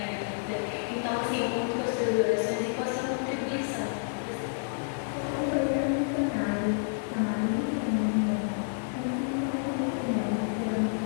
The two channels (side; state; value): right; silent; digital silence